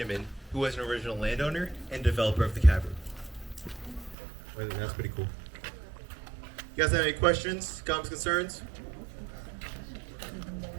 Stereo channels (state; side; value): drops out; left; at 4.2 s